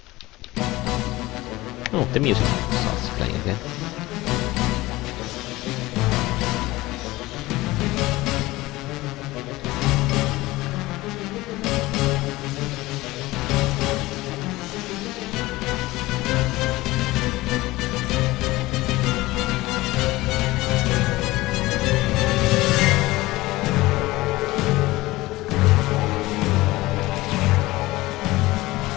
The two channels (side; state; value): right; quieter; 19.2 dB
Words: Oh, the music starts playing again.